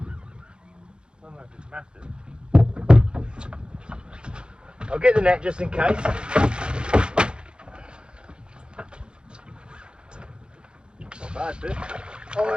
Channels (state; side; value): late; left; 0.051 ms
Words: don't know if it's massive. I'll get the net just in case. Bad fish.